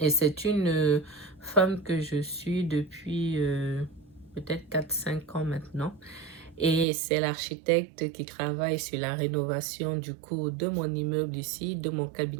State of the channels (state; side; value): drops out; left; at 6.9 s